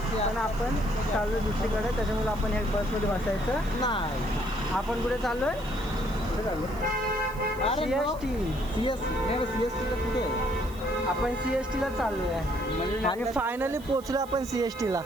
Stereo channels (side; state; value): right; noise; hiss, 22 dB below the sound